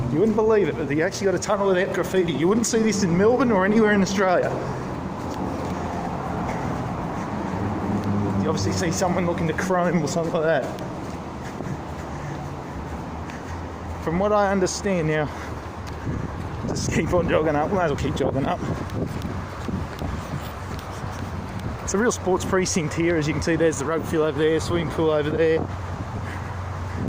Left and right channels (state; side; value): identical; both; correlation 1.00